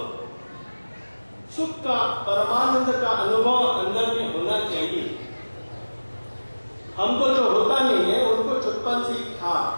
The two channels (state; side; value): inverted; both; correlation -1.00